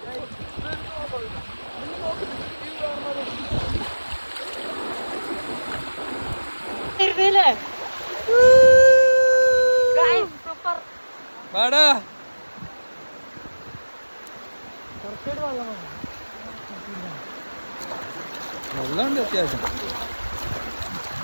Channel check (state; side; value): inverted; both; correlation -1.00